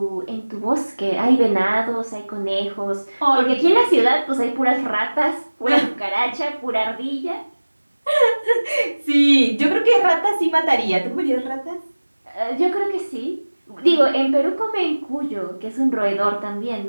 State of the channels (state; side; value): inverted; both; correlation -1.00